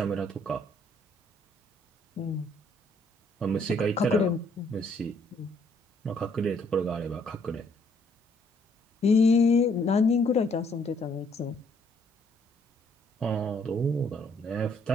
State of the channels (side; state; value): both; normal; correlation 0.67